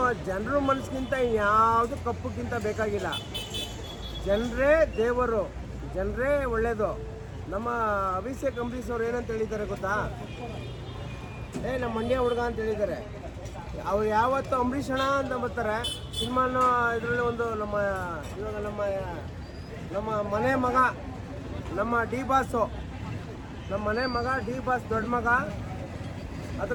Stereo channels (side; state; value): both; identical; correlation 1.00